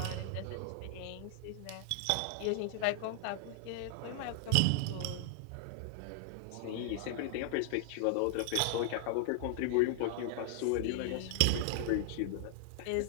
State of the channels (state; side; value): different; both; correlation 0.00